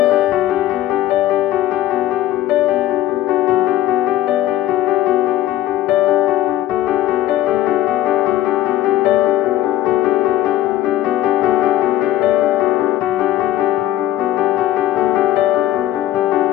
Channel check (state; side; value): quieter; right; 13.8 dB